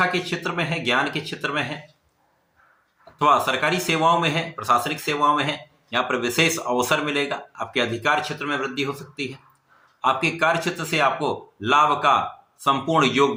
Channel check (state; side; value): identical; both; correlation 1.00